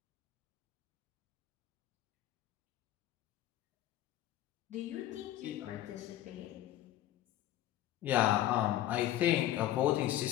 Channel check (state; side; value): quieter; right; 13.2 dB